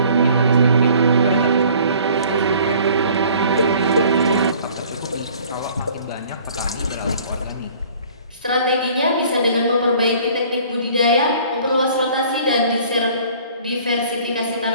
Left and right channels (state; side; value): inverted; both; correlation -0.53